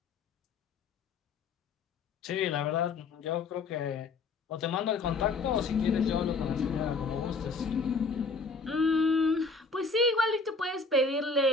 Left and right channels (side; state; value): right; quieter; 4.1 dB